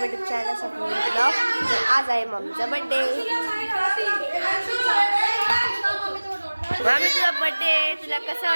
YouTube channel Swapnil blog. आज आहे मम्मीचा बर्थडे. मम्मी तुझा बर्थडे, तुला कसं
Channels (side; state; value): both; inverted; correlation -1.00